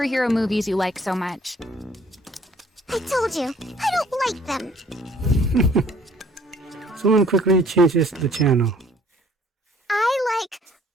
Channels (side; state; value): both; normal; correlation 0.58